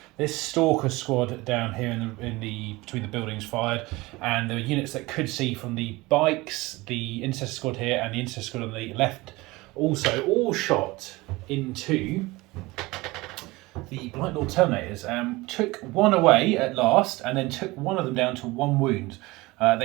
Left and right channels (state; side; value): quieter; left; 21.5 dB